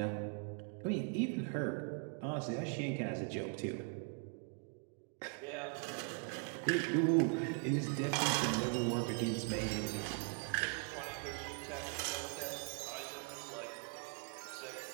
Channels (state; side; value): quieter; left; 37.8 dB